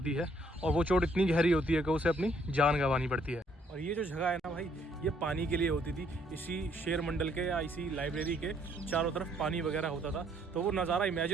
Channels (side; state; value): both; normal; correlation 0.67